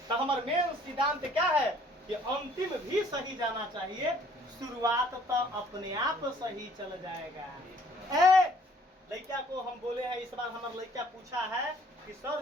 तो हमारा मेन सिद्धांत क्या है कि अंतिम भी सही जाना चाहिए, शुरुआत तो अपने आप सही चल जाएगा। लड़का को हम बोले हैं, इस बार हमारा लड़का पूछा है कि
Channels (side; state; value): both; normal; correlation 0.59